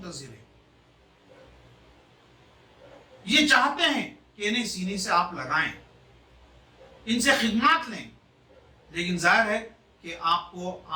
ہیں. یہ چاہتے ہیں کہ انہیں سینے سے آپ لگائیں، ان سے خدمات لیں، لیکن ظاہر ہے کہ آپ کو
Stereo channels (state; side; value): identical; both; correlation 1.00